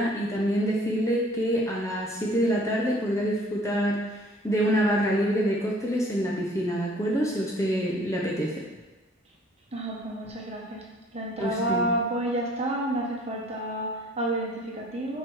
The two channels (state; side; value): normal; both; correlation 0.55